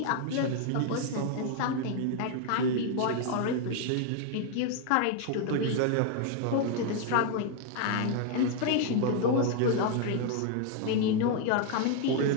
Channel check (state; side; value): different; both; correlation 0.00